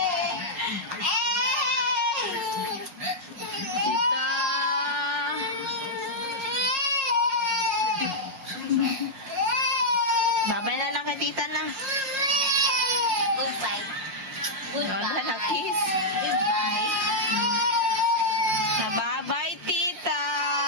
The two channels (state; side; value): late; left; 5.6 ms